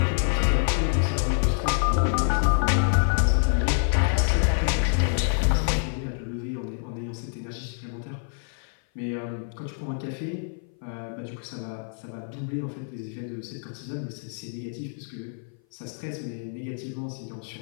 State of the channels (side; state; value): right; silent; 56 dB below the other